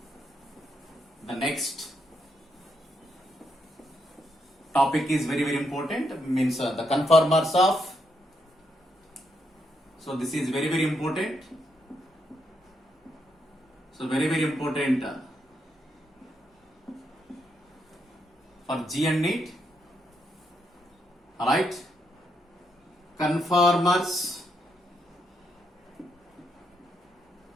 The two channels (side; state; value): both; normal; correlation 0.78